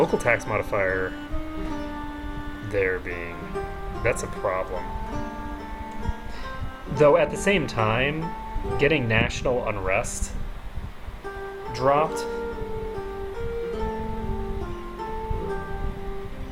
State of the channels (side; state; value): both; identical; correlation 1.00